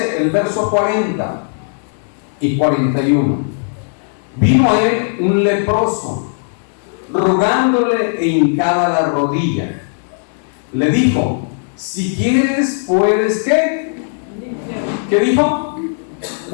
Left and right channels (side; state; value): right; silent; digital silence